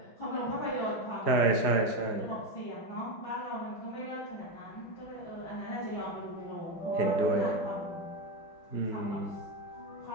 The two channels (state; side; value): late; right; 4.8 ms